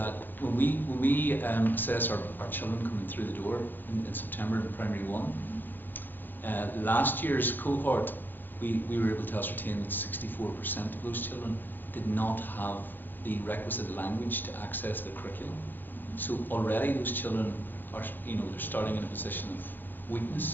when we assess our children coming through the door in September in Primary 1, last year's cohort, we were able to ascertain that 64% of those children did not have the requisite language to access the curriculum. So already those children are, you know, they're starting in a position of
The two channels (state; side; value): late; right; 0.090 ms